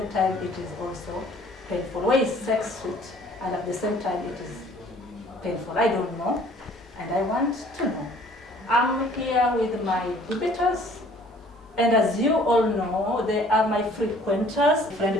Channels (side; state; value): both; normal; correlation 0.55